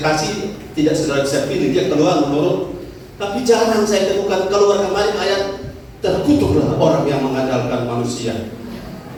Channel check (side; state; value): both; identical; correlation 1.00